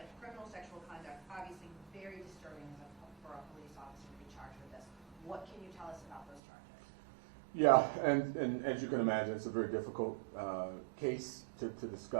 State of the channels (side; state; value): left; drops out; at 6.4 s